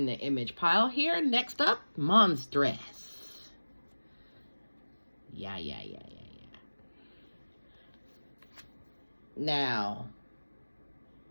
the image pile here. Next up, Monstress. Yeah. Now,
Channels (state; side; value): inverted; both; correlation -1.00